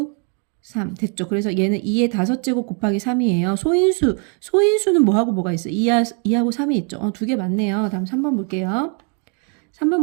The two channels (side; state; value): left; quieter; 39.1 dB